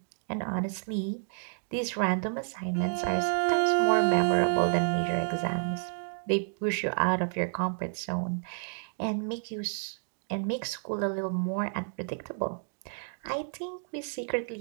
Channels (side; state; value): left; silent; digital silence